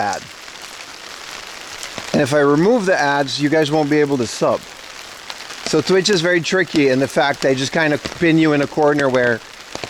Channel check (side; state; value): both; identical; correlation 1.00